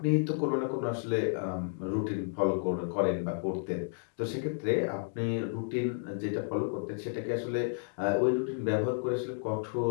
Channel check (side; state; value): right; silent; digital silence